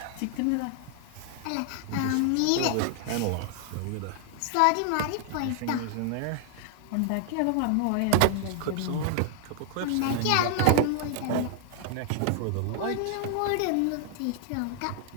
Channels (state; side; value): different; both; correlation 0.00